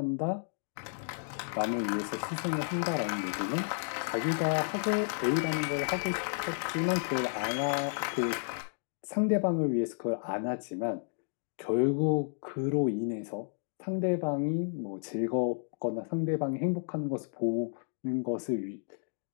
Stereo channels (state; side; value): silent; right; digital silence